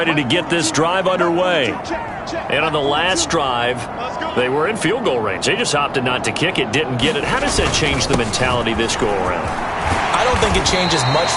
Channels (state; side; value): identical; both; correlation 1.00